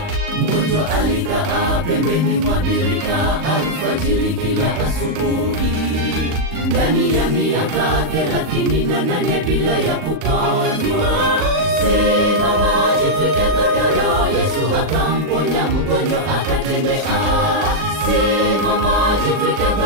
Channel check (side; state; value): left; late; 39 ms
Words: Mgonjwa alikaa pembeni mwa birika alfajiri kila asubuhi, ndani ya miaka 38 bila ya kupona. Simama, jitwike godoro, Yesu akamponya mgonjwa akatembea. Simama, jitwike